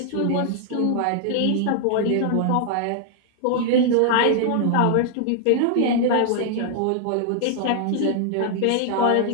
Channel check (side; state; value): both; different; correlation 0.00